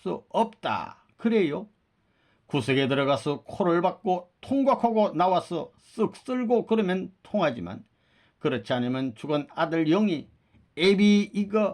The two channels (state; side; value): identical; both; correlation 1.00